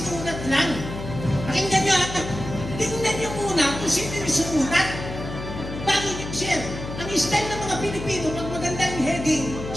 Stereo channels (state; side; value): noise; left; hum, 8 dB below the sound